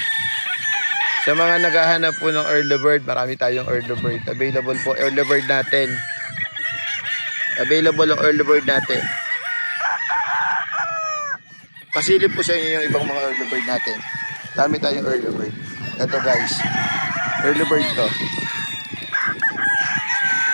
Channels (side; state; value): both; inverted; correlation -1.00